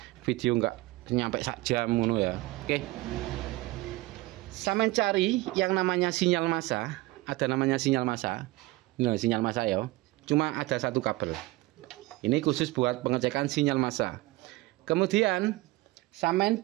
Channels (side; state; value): left; quieter; 20.2 dB